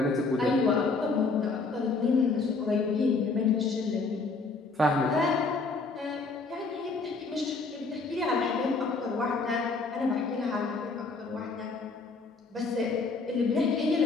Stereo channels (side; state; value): right; quieter; 4.0 dB